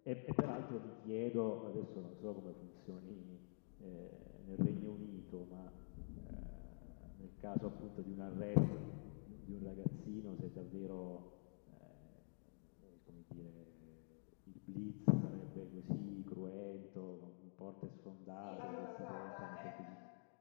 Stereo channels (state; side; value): silent; right; digital silence